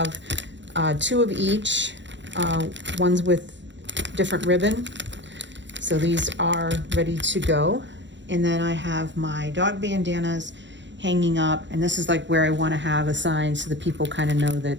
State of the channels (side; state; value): left; late; 0.53 ms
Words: two of each, ones with different ribbon. So these are ready to go. And then I have my dog bandanas hanging up, and this is like where I want to have a sign so that people kind of know